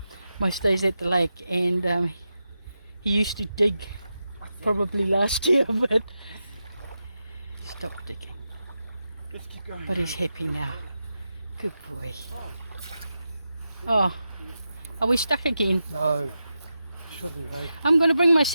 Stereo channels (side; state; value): both; inverted; correlation -0.89